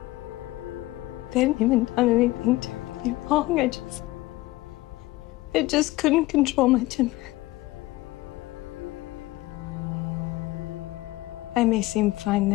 They hadn't even done anything terribly wrong. I just couldn't control my temper. I may seem fine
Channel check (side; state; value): right; quieter; 18.9 dB